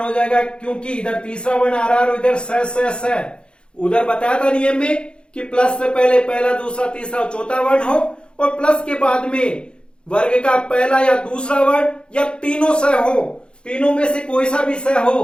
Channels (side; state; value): right; late; 0.054 ms